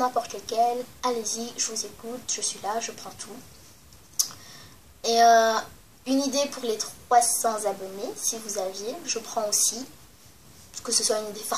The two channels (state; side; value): identical; both; correlation 1.00